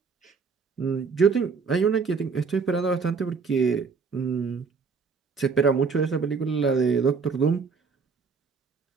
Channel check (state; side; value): quieter; left; 5.2 dB